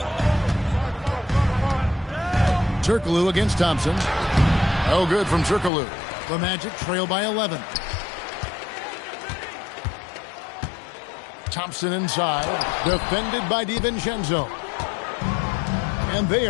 Turkoglu against Thompson. No good from Turkoglu. The Magic trail by 11. Thompson inside. Defended by DiVincenzo. And they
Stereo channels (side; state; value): right; drops out; at 5.7 s